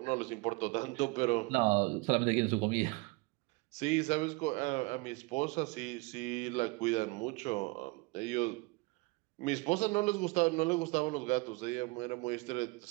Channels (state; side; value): quieter; left; 25.6 dB